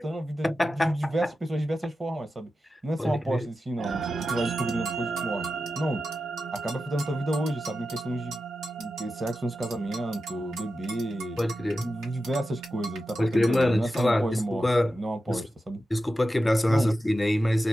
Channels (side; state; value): both; normal; correlation 0.91